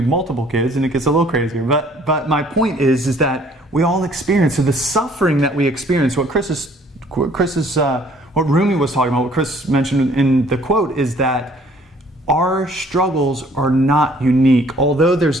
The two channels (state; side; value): normal; both; correlation 0.58